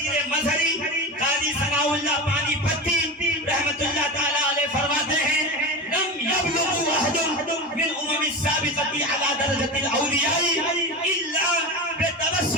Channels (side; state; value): both; normal; correlation 0.24